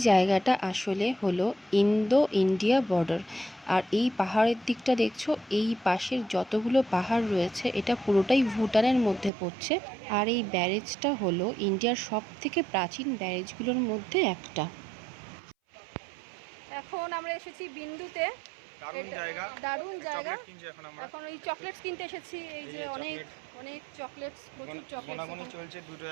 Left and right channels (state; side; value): drops out; left; at 9.3 s